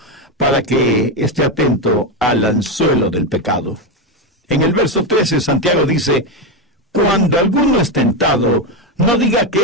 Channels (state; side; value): normal; both; correlation 0.10